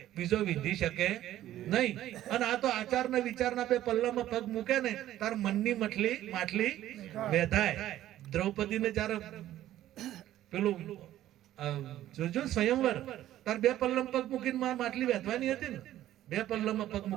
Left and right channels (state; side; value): quieter; left; 13.3 dB